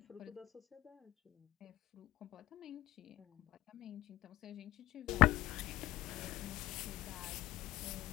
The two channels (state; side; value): quieter; right; 16.5 dB